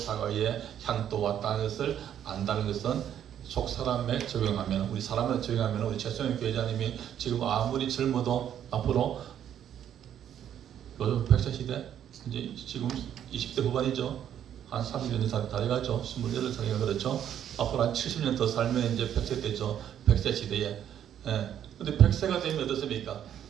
향도 왔다는 것을 안다는 것은 속 사람에 적용하면, 우리 사람에 적용하면 우리 최성현 교회자님이 지금 아무리 젊어도 앞으로 요즘 100세 시대, 이제 지금 20대 후반이죠. 한 30년 이상 다 돼가죠. 28살이가 그렇죠. 앞으로 한 70년 더 살면 이제 100세 되죠. 100세 시대에. 근데 100세가 되면 어떻습니까?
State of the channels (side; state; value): left; quieter; 10.0 dB